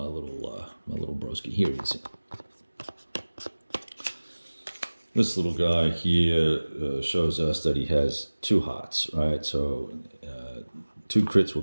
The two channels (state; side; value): inverted; both; correlation -1.00